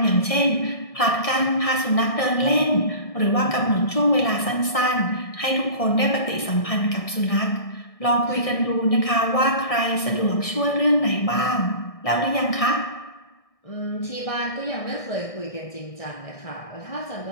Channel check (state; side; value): late; right; 1.6 ms